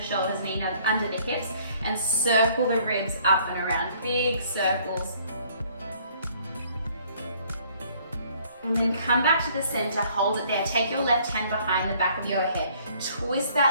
shoulders, knee under the hips, and circle the ribs up and around, big circles. And then come back to the center, hold it there. Take your left hand behind the back of your head. Twist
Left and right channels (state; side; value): inverted; both; correlation -0.60